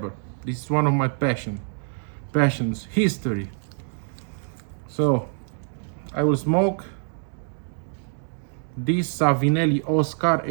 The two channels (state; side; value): silent; left; 60 dB below the other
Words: This is one of my passions, history. So I will smoke this Savinelli Oscar